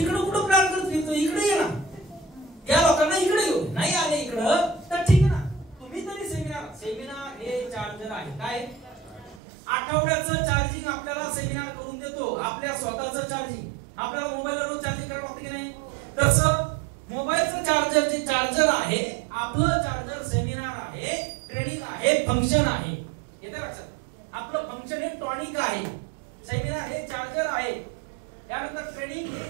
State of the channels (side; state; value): left; drops out; at 9.4 s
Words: कुठं प्लॅन करत, इकडे ये ना, या लोकांना इकडे येऊ, नाही आले इकडं तर ठीक आहे ना, तुम्ही तरी सेमिनार हे चार्जर आहे. काय आठवड्याचं चार्जिंग आपल्याला सेमिनार करून देतो, आपल्या स्वतःचं चार्जिंग. आपल्याला मोबाईलवर चार्जिंग करावं लागतं की नाही, तसं मोबाईलचं चार्जर जे चार्जर आहे, आपलं चार्जर सेमिनार आहे, ट्रेनिंग आहे, फंक्शन आहे. येतं लक्षात, आपलं फंक्शन हे टॉनिक आहे, सेमिनार हे चार्जर आहे, त्यानंतर ट्रेनिंग हे